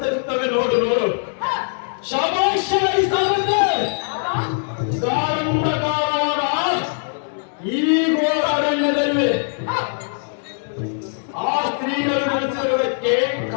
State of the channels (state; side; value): silent; right; 64 dB below the other